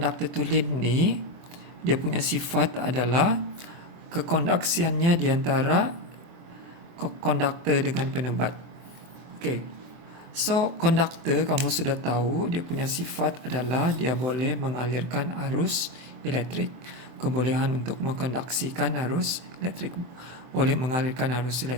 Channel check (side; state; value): left; late; 24 ms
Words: tulin ni dia punya sifat adalah kekondaksiannya di antara konduktor dengan penebat. Okay, so konduktor kamu sudah tahu dia punya sifat adalah dia boleh mengalirkan arus elektrik. Kebolehan untuk mengkondaksikan arus elektrik, boleh mengalirkan arus